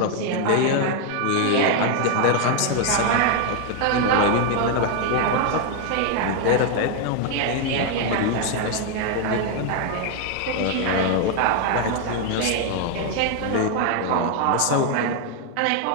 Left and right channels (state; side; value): different; both; correlation 0.01